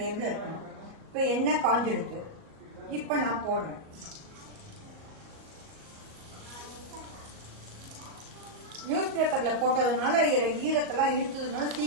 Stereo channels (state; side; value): late; left; 38 ms